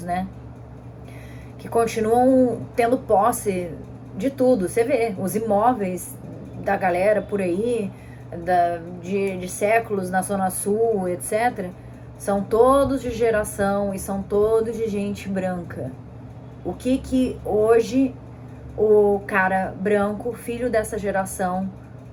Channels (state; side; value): identical; both; correlation 1.00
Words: né? Que continuam tendo posse de tudo. Você vê, os imóveis da galera por aí, de séculos na Zona Sul, etc., são todos de geração e são todos de gente branca. O que hoje o cara branco, filho dessa geração,